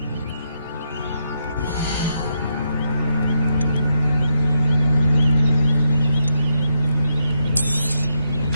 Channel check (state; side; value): inverted; both; correlation -0.82